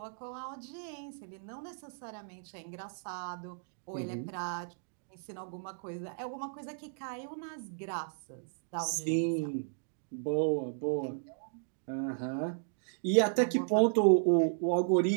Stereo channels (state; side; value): silent; left; digital silence